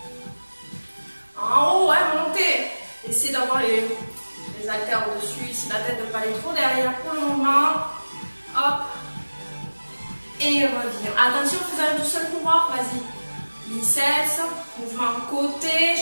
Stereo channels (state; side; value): inverted; both; correlation -1.00